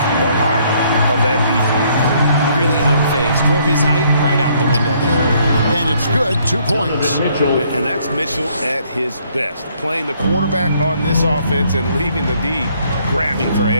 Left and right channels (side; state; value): both; inverted; correlation -0.66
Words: the heart of that defense. Really unfazed. Throw his height right out the window there. And it's good, 2 points. And that's Mitchell at his best. Playing the quarterback on this offense and leaving the D grabbing for